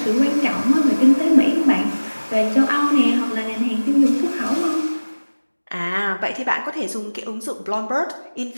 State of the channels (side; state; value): both; inverted; correlation -1.00